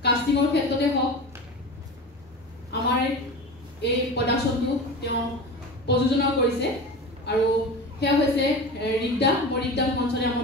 কাষ্টিঙৰ ক্ষেত্ৰতে হওক আমাৰ এই প্ৰডাকশ্যনটো তেওঁ প্ৰযোজনা কৰিছে আৰু সেয়া হৈছে ৰিক্তা। মই ৰিক্তাক মঞ্চলৈ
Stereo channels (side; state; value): both; normal; correlation 0.30